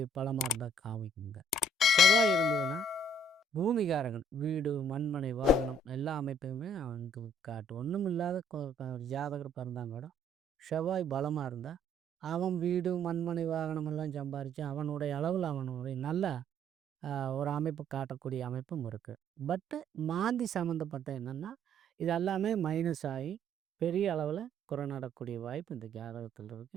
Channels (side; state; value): both; normal; correlation 0.62